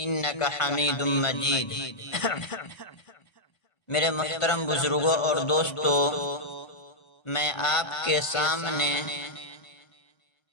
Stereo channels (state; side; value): late; right; 1.3 ms